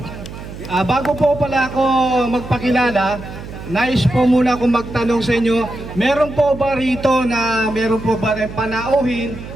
Bago po pala ako magpakilala, nais po muna akong magtanong sa inyo, meron po ba rito na meron po ba rin panauhin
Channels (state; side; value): noise; right; hum, 12 dB below the sound